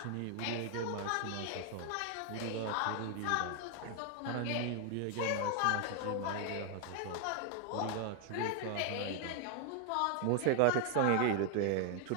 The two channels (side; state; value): both; different; correlation 0.00